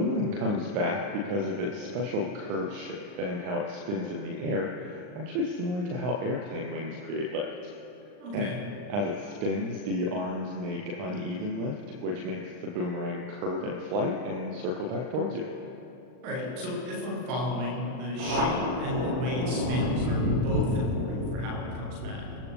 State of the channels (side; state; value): left; late; 39 ms